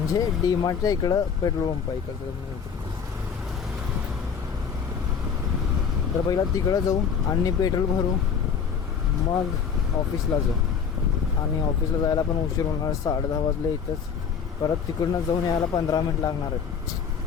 डीमार्टच्या इकडं पेट्रोल पंप आहे इकडं. तर पहिला तिकडं जाऊ आणि पेट्रोल भरू, मग ऑफिसला जाऊ. आणि ऑफिसला जायला पण उशीर होणार, 10:30 वाजले इथंच. परत तिकडनं जाऊन यायला 15 मिनिट लागणार आहेत.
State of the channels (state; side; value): quieter; right; 6.7 dB